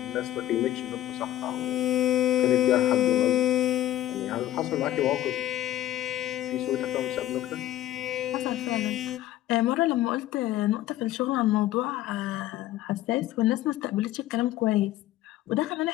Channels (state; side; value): quieter; right; 13.7 dB